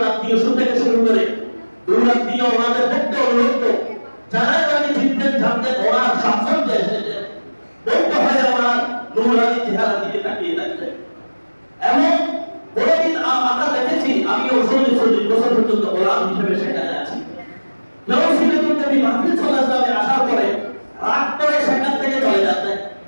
আত্মীয় থেকে শুরু করে দূরাত্মীয় ওনাদের পক্ষে অনুরোধ, যারা তাকে চিনতেন জানতেন ওনার সাফল্যে এসেছে, বলতে হয় ওনার নুরানি চেহারা দিকে তাকিয়ে থাকতেন। এমন কোনদিন আমরা দেখেছি, আমি 40 বছর পর্যন্ত গোলাম হিসেবে সেখানে আছি, কেউ ছিলেন নবী মাহফিল সাল্লাল্লাহু আসার পরে রাগ করে সেখান থেকে চলে যাচ্ছেন,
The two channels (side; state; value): both; inverted; correlation -1.00